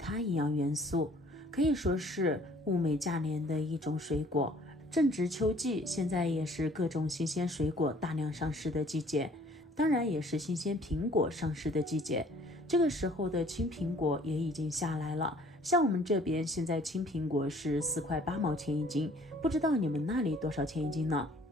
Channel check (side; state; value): both; normal; correlation 0.56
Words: 营养元素，可以说是物美价廉的一种水果。正值秋季，现在也是各种新鲜水果大量上市的季节，当然也是新鲜苹果上市的季节。这个时候的青苹果也已经下来了，像我们这边现在青苹果是4块8毛钱一斤，不知道你们那里多少钱一斤呢？